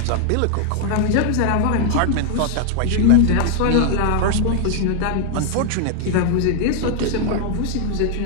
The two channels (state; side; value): different; both; correlation 0.00